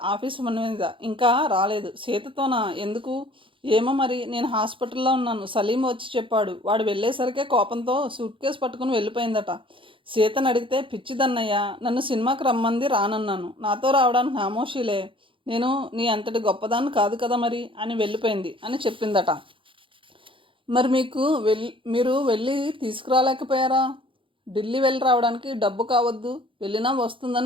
ఆఫీసు మీద. ఇంకా రాలేదు. సీతతోనా? ఎందుకు ఏమో మరి. నేను హాస్పిటల్లో ఉన్నాను. సలీం వచ్చి చెప్పాడు. వాడు వెళ్ళేసరికే కోపంతో సూట్ కేసు పట్టుకుని వెళ్ళిపోయిందట. సీతను అడిగితే పిచ్చిదన్నయ్య, నన్ను సినిమాకి రమ్మంది, రానన్నాను. నాతో రావడానికి నామోషీలే. నేను నీ అంతటి గొప్పదాన్ని కాదు కదా మరి అని వెళ్ళిపోయింది అని చెప్పిందట. మరి మీరు వెళ్ళి తీసుకురాలేకపోయారా? ఢిల్లీ వెళ్ళి రావడానికి డబ్బు కావద్దు, వెళ్ళినా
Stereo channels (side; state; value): left; late; 0.25 ms